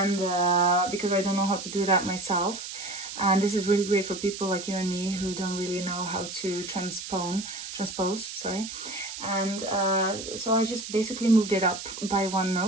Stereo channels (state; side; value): noise; right; hiss, 9 dB below the sound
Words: because I don't know how to do that myself. And this is really great for people like you and me who don't really know how to transpose, sorry. And so I just basically moved it up by one